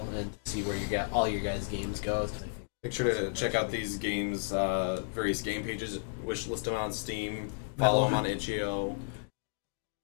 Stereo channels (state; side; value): silent; right; digital silence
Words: and see where all your guys' games go. Make sure to check out these games, various game pages, wishlist them on Steam, follow them on itch.io.